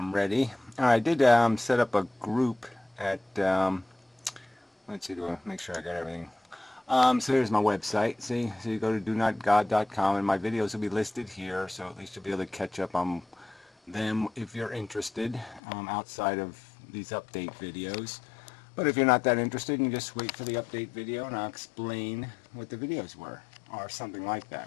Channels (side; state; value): right; drops out; at 15.6 s